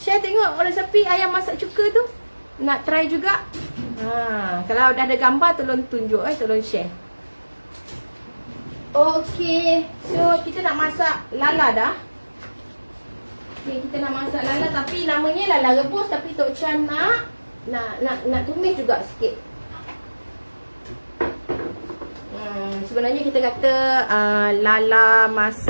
Share tengok orang Sapi ayam masak cuka tu. Nak try juga. Kalau dah ada gambar tolong tunjuk tolong share. Okey. So kita nak masak lala dah. Okey, kita nak masak lala tapi namanya lala rebus tapi Tok Chan nak tumis juga sikit. Sebenarnya kita kata lala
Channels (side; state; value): both; inverted; correlation -1.00